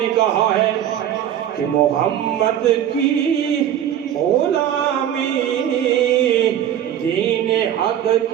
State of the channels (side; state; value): left; quieter; 10.4 dB